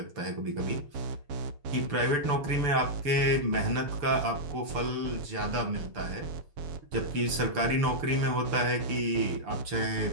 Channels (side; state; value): left; late; 6.8 ms